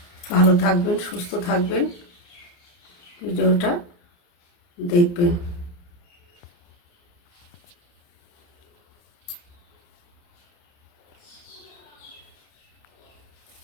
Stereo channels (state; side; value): late; right; 29 ms